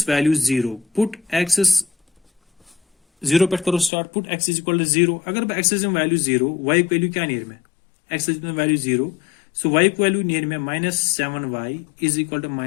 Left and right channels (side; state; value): right; drops out; at 3.9 s